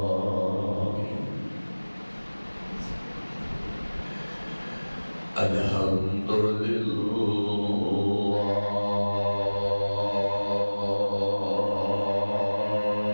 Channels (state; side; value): inverted; both; correlation -1.00